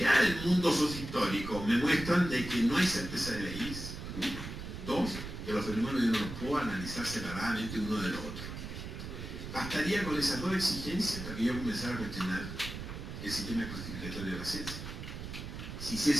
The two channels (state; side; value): noise; right; rumble, 8 dB below the sound